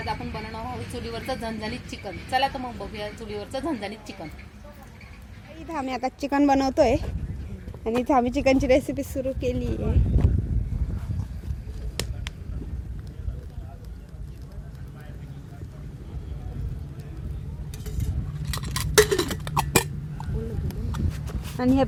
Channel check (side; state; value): both; identical; correlation 1.00